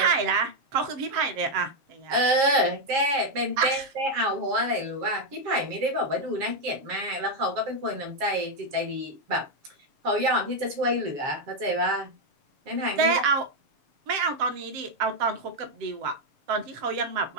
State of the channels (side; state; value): left; late; 7.4 ms